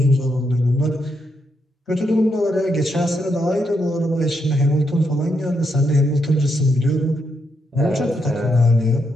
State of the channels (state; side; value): normal; both; correlation 0.80